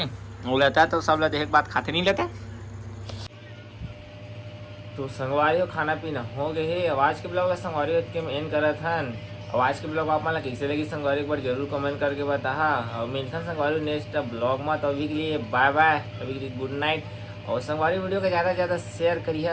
वो लेता तो सब ला देख बात खाते नहीं लेता। तो संगवारी हो खाना पीना हो गए है। आवाज के ब्लॉग संगवारी के एंड करत हन। आवाज के ब्लॉग आप मन कैसे लगी संगवारी एक बार जरूर कमेंट करके बता। और मिलता संगवारी नेक्स्ट ब्लॉग में। तो अभी के लिए बाय बाय, अभी के लिए गुड नाइट। और संगवारी वीडियो को ज़्यादा से ज़्यादा शेयर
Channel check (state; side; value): identical; both; correlation 1.00